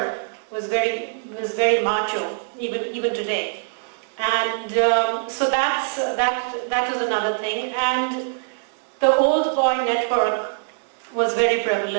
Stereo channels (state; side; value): silent; left; digital silence